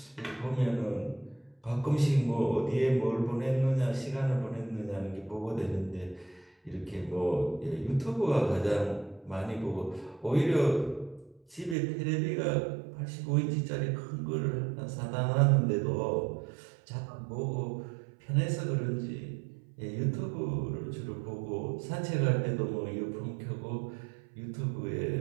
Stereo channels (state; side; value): drops out; left; at 11.8 s